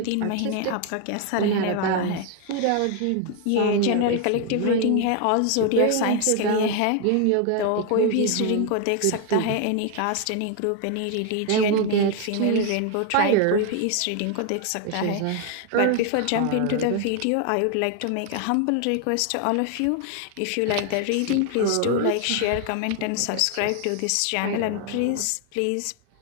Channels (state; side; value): different; both; correlation 0.00